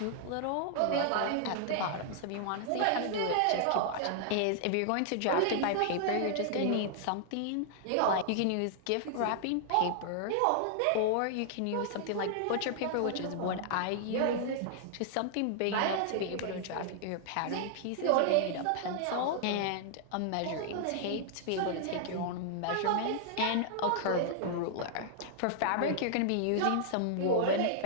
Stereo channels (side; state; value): both; different; correlation -0.01